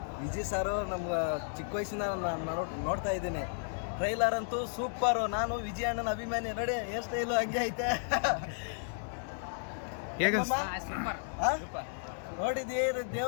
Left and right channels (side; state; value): right; silent; 55 dB below the other